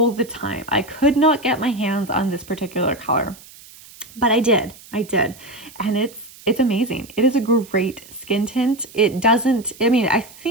the time. I could not get my hands on this particular color, but I did, and It's amazing. It is a great skin tint. It doesn't, I mean, I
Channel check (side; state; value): right; noise; hiss, 21 dB below the sound